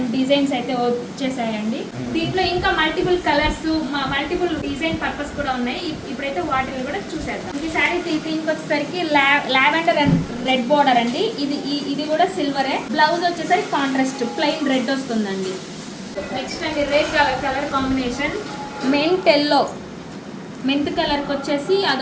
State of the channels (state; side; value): identical; both; correlation 1.00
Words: డిజైన్స్ అయితే వచ్చేసాయండి. దీంట్లో ఇంకా multiple colours, multiple design purpose కూడా ఉన్నాయి. ఇప్పుడైతే వాటిని కూడా చూసేద్దాం. ఈ శారీ దీనికి వచ్చేసరికి లావెండర్ అండ్ రెడ్ బార్డర్ అండి. ఇది కూడా సిల్వరే. బ్లౌజ్ వచ్చేసరికి కాంట్రాస్ట్ ప్లెయిన్ రెడ్ వస్తుందండి. నెక్స్ట్ అండి రెడ్ కలర్ కాంబినేషన్ మెంత్ కలర్కి వచ్చేసి